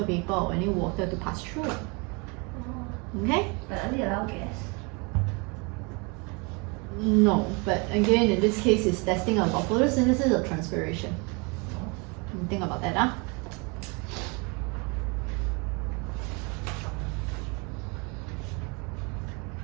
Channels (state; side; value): quieter; left; 30.8 dB